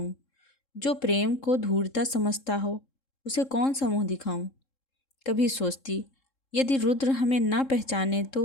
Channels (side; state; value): right; late; 3.7 ms